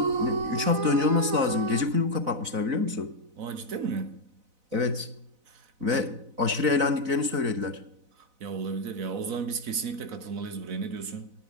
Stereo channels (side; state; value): left; late; 4.0 ms